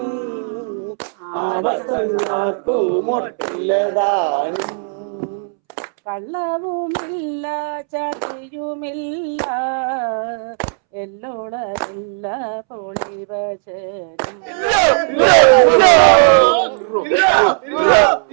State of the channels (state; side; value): silent; left; 68 dB below the other